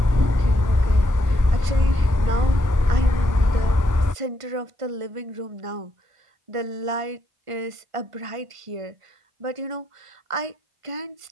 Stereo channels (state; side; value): late; left; 1.5 ms